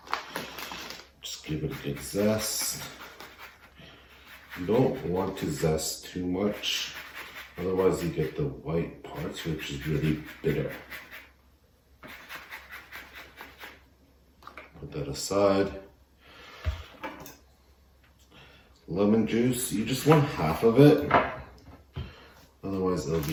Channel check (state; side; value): identical; both; correlation 1.00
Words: just give it a good zest. You don't want to zest too much, otherwise you get the white parts, which is really bitter. Put that aside. Lemon juice, you just want half of it, otherwise it'll